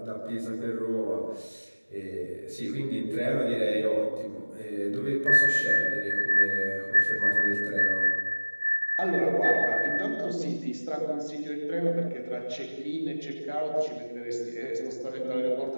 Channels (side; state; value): both; inverted; correlation -1.00